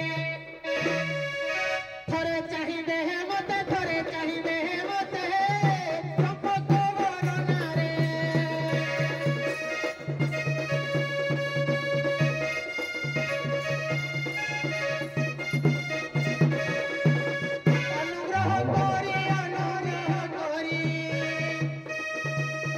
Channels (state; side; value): identical; both; correlation 1.00